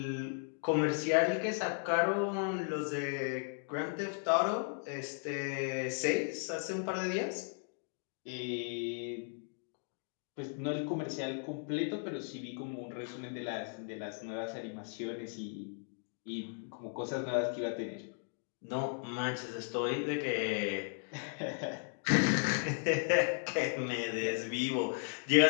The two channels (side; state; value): right; silent; 54 dB below the other